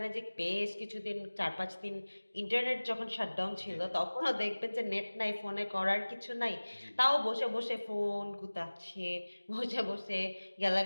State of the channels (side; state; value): both; inverted; correlation -1.00